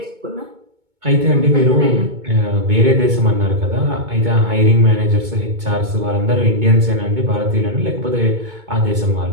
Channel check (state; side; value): late; left; 2.2 ms